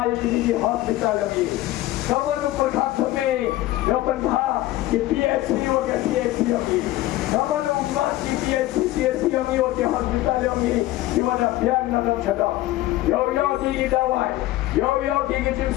di hospital ini kamu nu perkat me yo pen bha di PHC yo ke PHC ini kamu nu mas di PHC yo ke hospital ini di mana pian nak chada yo di dawai yo di jin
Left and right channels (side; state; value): right; quieter; 16.2 dB